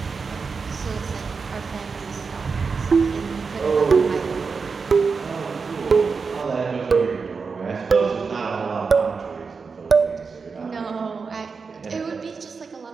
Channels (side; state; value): left; quieter; 5.0 dB